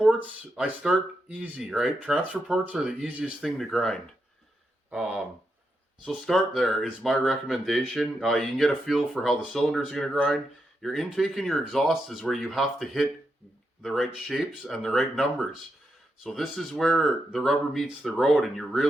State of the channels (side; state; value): both; normal; correlation 0.84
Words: I start easy, right? Transfer ports are the easiest thing to grind. Um, so start there is my recommendation. You can get a feel for how the cylinder is gonna grind. Your intake and your exhaust is where you have to hit the right shapes and the right numbers. So this is where the rubber meets the road, and you're